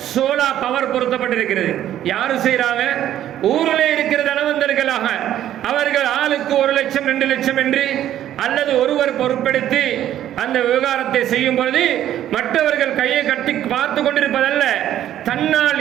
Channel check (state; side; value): quieter; left; 11.8 dB